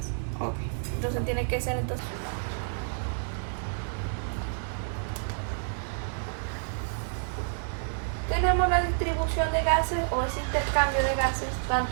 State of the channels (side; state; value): left; silent; digital silence